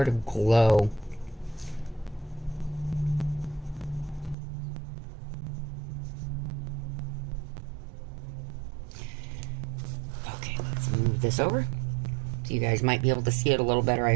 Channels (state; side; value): drops out; left; at 4.4 s